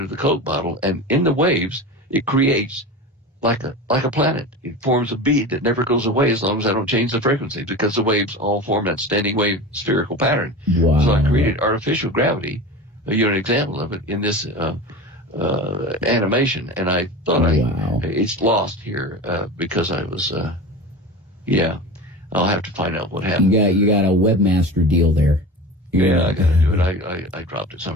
the Coke bottle. And in the waves, it creates like a planet. It forms a bead that never goes away as long as I don't change the frequency, because the waves all form that standing wave spherical pattern. Wow. So I created artificial gravity, an example of it in this animation, and I thought it's lost here because I was I'll have to find out what happened. You got a webmaster deal there. Yeah, I got to do it. I dropped it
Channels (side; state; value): both; normal; correlation 0.31